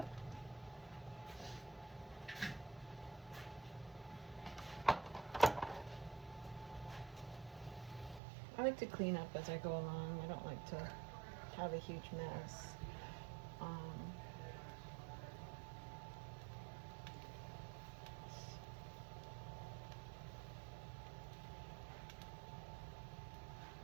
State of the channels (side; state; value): left; drops out; at 8.2 s